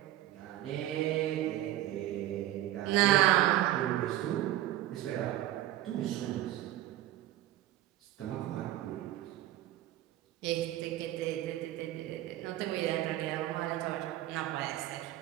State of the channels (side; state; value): left; quieter; 14.1 dB